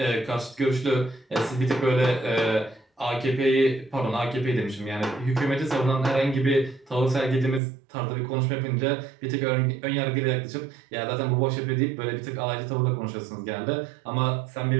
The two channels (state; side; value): drops out; left; at 7.6 s